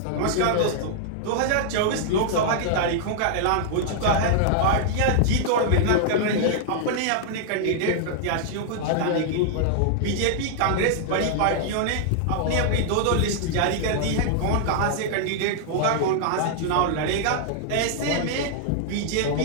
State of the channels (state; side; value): different; both; correlation -0.01